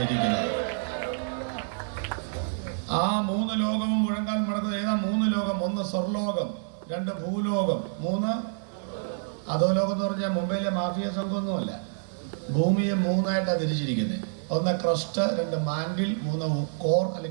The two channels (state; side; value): silent; left; 60 dB below the other